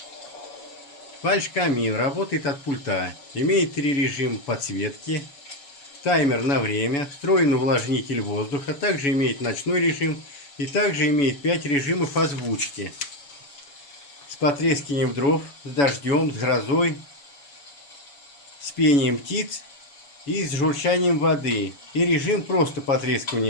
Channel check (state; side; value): late; right; 7.0 ms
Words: Фальш-камин работает от пульта, имеет 3 режима подсветки, таймер на время, встроенный увлажнитель воздуха, также имеет ночной режим и также имеет 5 режимов озвучки. С потрескиванием дров, с дождем, с грозой, с пением птиц и с журчанием воды, и режим просто